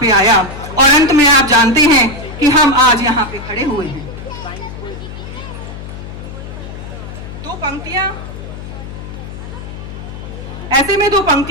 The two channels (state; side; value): noise; left; hum, 11 dB below the sound